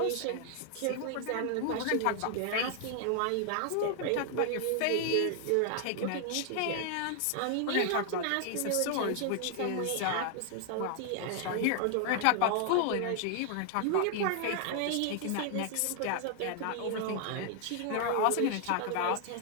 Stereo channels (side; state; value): both; different; correlation 0.00